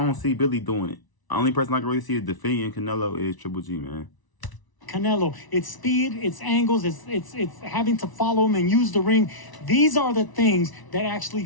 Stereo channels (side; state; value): right; late; 1.0 ms